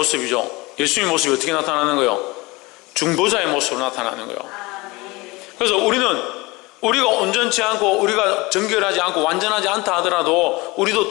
예수님의 모습이 어떻게 나타나는 거예요? 중보자의 모습으로 나타나는 거예요. 그래서 우리가 온전치 않고 우리가 정결하지 않고 완전하지 않다 하더라도 우리도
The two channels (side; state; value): right; quieter; 23.2 dB